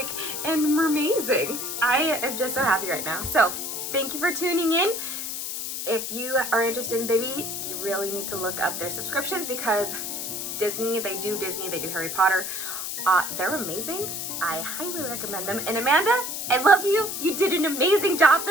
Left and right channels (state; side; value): noise; left; hiss, 4 dB below the sound